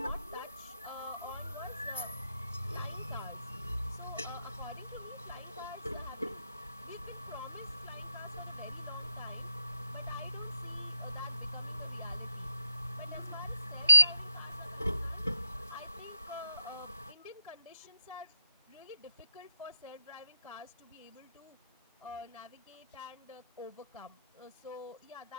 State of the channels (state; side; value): inverted; both; correlation -0.76